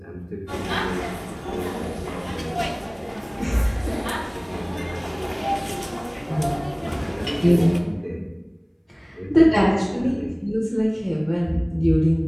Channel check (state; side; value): identical; both; correlation 1.00